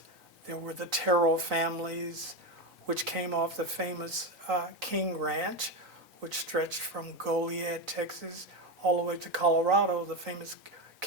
there were the Terrell families, which came off the famous King Ranch, which stretched from Goliad, Texas, all the way to Colorado, the famous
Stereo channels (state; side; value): normal; both; correlation 0.14